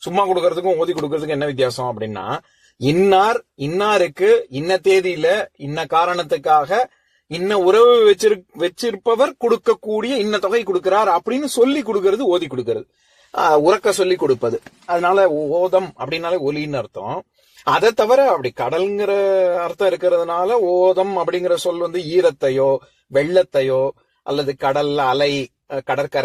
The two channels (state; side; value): identical; both; correlation 1.00